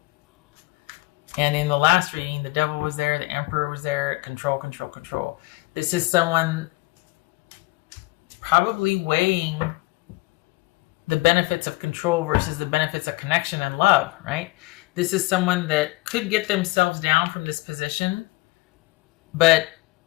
And in the last reading, the Devil was there, the Emperor was there. Control, control, control. This is someone probably weighing the benefits of control versus the benefits of connection and love, right? This is someone that could get themselves down from this position, but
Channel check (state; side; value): quieter; right; 22.9 dB